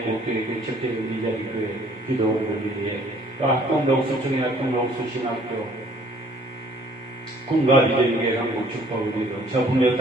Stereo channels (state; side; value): normal; both; correlation 0.58